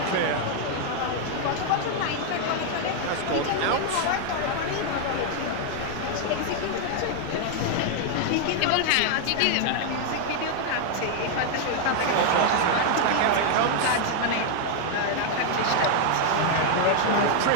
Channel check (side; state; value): both; different; correlation 0.00